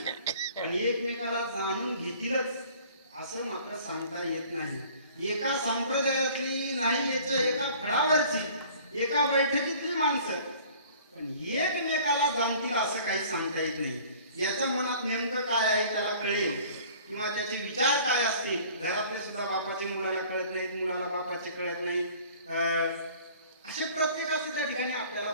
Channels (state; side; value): inverted; both; correlation -0.50